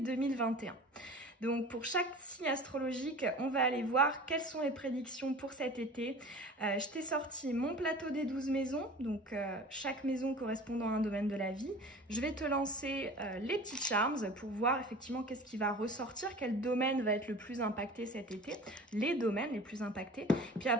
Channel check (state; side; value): normal; both; correlation 0.40